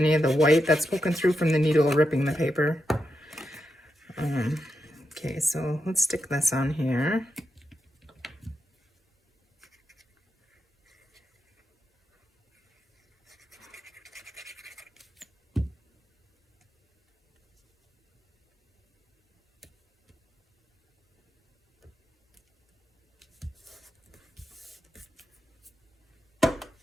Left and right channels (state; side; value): normal; both; correlation 0.87